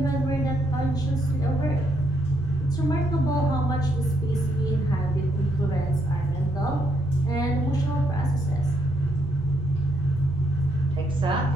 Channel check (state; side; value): normal; both; correlation 0.75